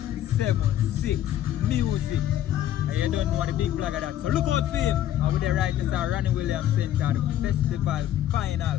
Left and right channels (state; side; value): quieter; right; 12.0 dB